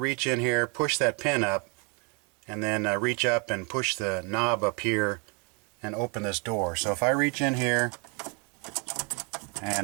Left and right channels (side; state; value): left; quieter; 33.6 dB